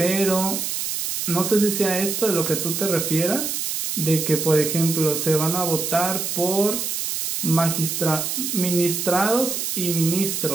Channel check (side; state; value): right; noise; hiss, 2 dB below the sound